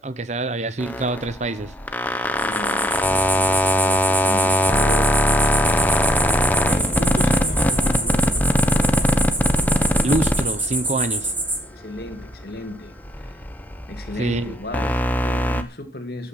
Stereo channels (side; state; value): both; normal; correlation 0.70